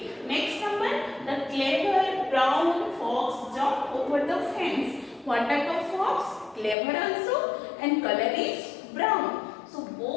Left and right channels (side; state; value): right; drops out; at 6.8 s